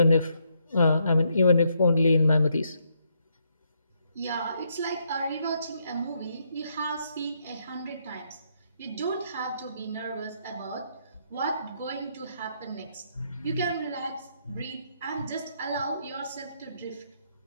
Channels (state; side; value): inverted; both; correlation -0.75